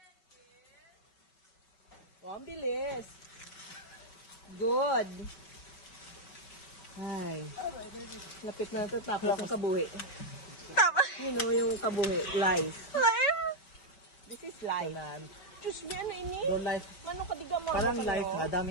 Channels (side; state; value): right; late; 5.2 ms